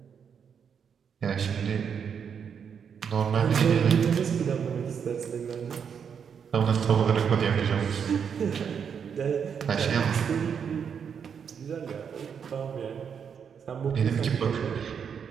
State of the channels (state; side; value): quieter; left; 7.2 dB